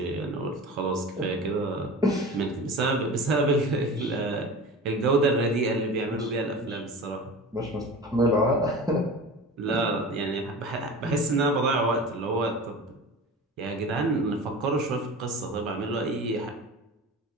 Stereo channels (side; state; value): both; normal; correlation 0.34